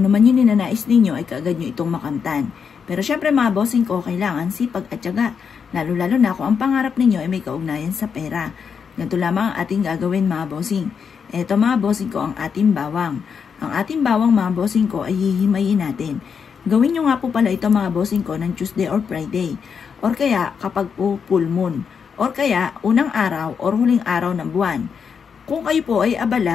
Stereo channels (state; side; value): quieter; right; 6.5 dB